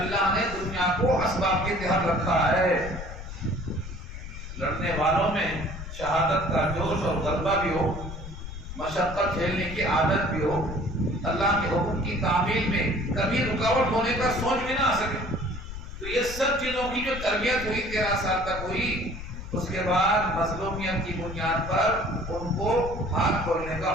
نے دنیا کو اسباب کے تحت رکھا ہے۔ لڑنے والوں میں شہادت کا جوش اور غلبہ بھی ہو، مشقت جھیلنے کی عادت بھی ہو، اللہ کے حکم کی تعمیل میں کبھی رکاوٹ ہونے کا سوچ بھی نہ آ سکے۔ تو یہ سب چیزوں کی جو تربیت ہوئی 13 سال تک ہوئی، اس کے بعد مظلومیت کی بنیاد پر ان کو ہاتھ کھولنے کا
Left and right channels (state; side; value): noise; left; rumble, 10 dB below the sound